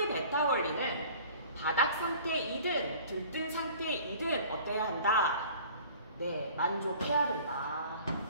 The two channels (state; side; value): inverted; both; correlation -0.48